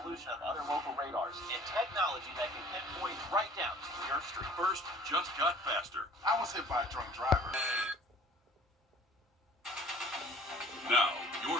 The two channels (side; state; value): both; normal; correlation 0.50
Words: of other local radars and technology that can pinpoint right down to your street. First just got faster. I was hit by a drunk driver. Now,